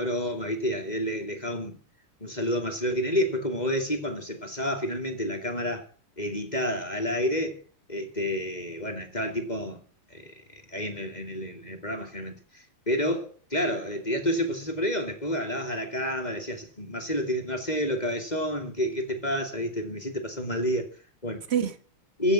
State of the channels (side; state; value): right; late; 2.0 ms